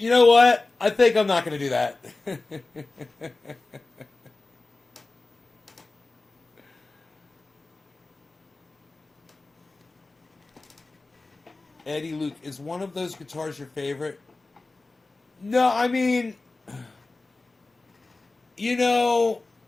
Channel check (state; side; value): quieter; right; 3.3 dB